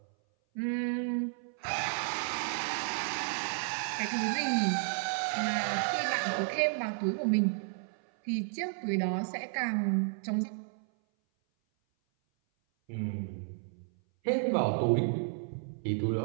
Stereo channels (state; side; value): silent; left; 56 dB below the other